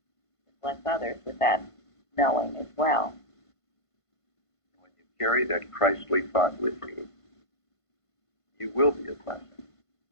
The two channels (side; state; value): right; late; 1.5 ms